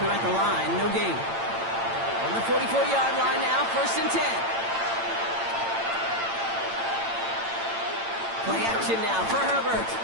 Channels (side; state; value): left; late; 8.8 ms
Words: him at the line. No gain. On the 44-yard line now, 1st and 10. Play action now for Herbert.